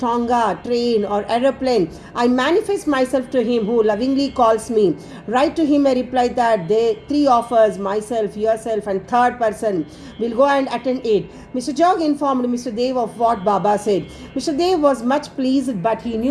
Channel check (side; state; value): both; identical; correlation 1.00